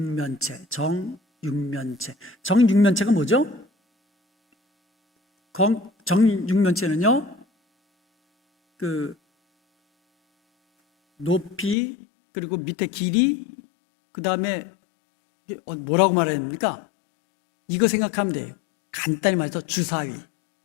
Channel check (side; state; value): right; drops out; at 11.8 s